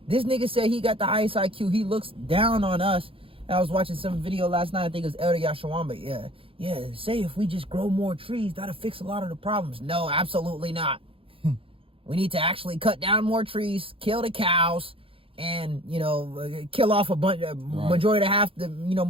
This nigga said he got the highest IQ. He looks down on us. I was watching some video last night. I think it was Elder Yashawamba. Yeah. Say if we just grow more trees, that'll fix a lot of the problems. No, absolutely not. We need to actually cut down more trees, kill the cows, and kill off majority of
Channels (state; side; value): late; left; 0.27 ms